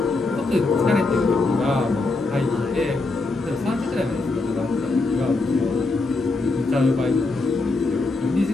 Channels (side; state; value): right; quieter; 3.4 dB